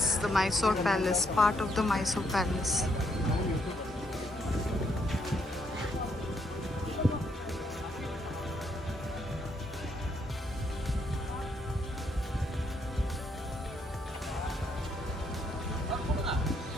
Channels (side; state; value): both; normal; correlation 0.73